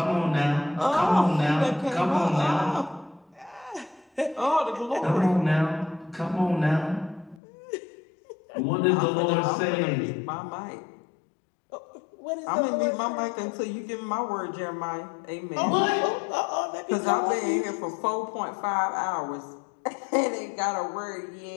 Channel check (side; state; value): right; drops out; at 7.4 s